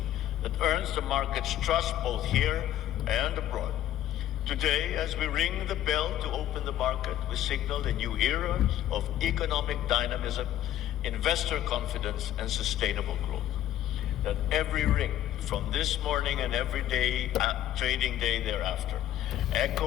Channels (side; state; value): right; quieter; 12.5 dB